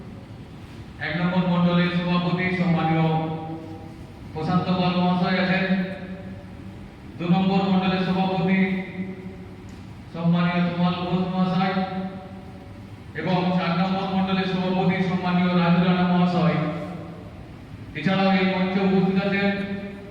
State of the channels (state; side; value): identical; both; correlation 1.00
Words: 1 নম্বর মন্ডলের সভাপতি সম্মানীয় প্রশান্ত পাল মহাশয় আছেন। 2 নম্বর মন্ডলের সভাপতি সম্মানীয় তোমাল ঘোষ মহাশয় এবং 4 নম্বর মন্ডলের সভাপতি সম্মানীয় রাজু রানা মহাশয়। এছাড়াও এই মঞ্চে উপস্থিত আছেন